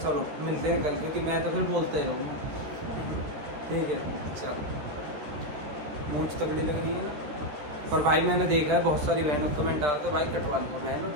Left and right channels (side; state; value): left; late; 13 ms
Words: चलो मिलते हैं कल, क्योंकि मैं तो फिर बोलते ही रहूँगा, ठीक है। चलो, मूंछ तगड़ी लग रही है ना। और भाई मैंने देखा है बहुत सारी बहनों कमेंट डालते, भाई कटवा लो बहनों,